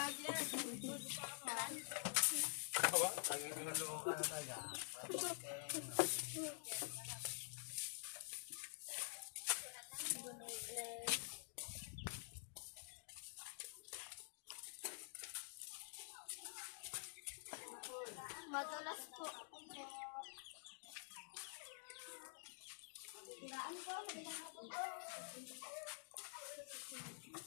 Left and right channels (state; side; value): silent; right; digital silence